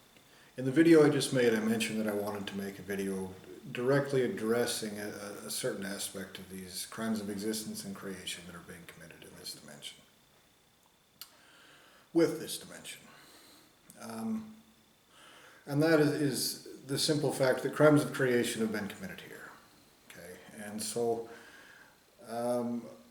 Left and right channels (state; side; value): identical; both; correlation 1.00